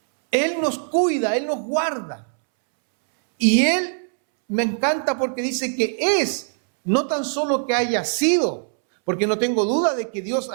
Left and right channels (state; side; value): silent; left; 65 dB below the other